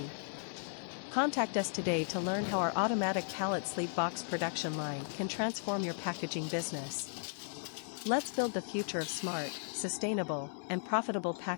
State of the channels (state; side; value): silent; right; 54 dB below the other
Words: Contact us today to learn how our automatic pallet sleeve box production line can transform your packaging business. Let's build the future of smart, sustainable, and profitable